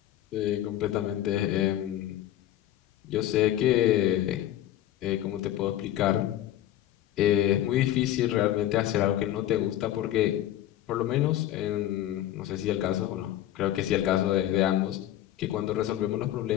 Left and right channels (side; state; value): right; quieter; 12.9 dB